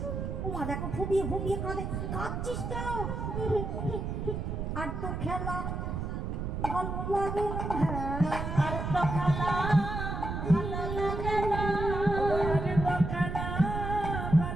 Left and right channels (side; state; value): right; noise; rumble, 3 dB below the sound